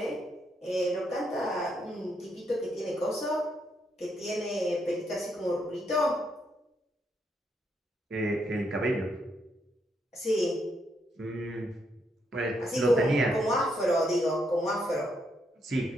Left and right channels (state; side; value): normal; both; correlation 0.77